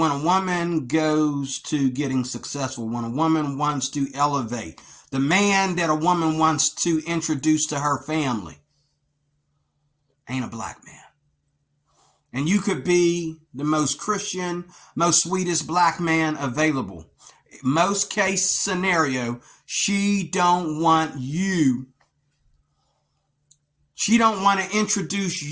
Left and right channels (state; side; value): identical; both; correlation 1.00